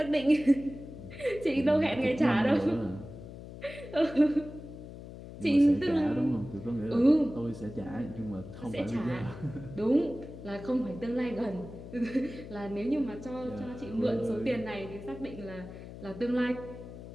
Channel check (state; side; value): noise; left; hum, 13 dB below the sound